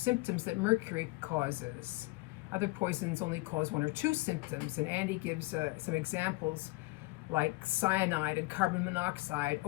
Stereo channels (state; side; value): quieter; right; 22.9 dB